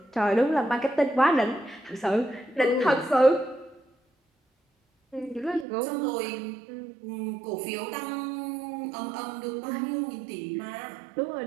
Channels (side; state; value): left; drops out; at 5.7 s